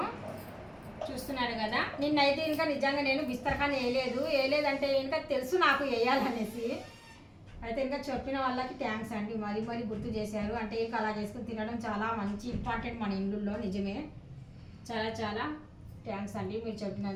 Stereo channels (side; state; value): both; identical; correlation 1.00